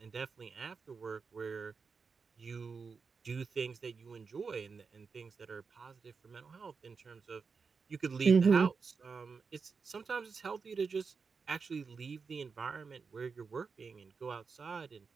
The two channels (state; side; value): quieter; left; 5.2 dB